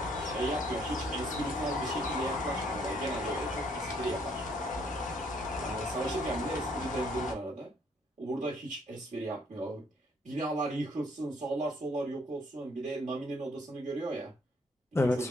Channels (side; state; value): both; normal; correlation 0.66